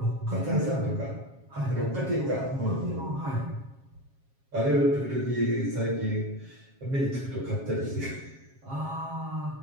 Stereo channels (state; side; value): late; left; 7.3 ms